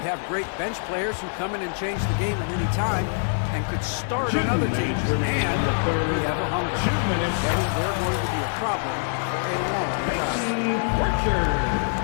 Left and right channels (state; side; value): silent; right; digital silence